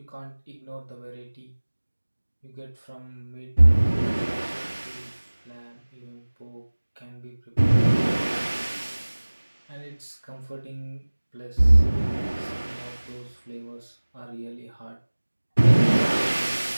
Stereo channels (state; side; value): inverted; both; correlation -1.00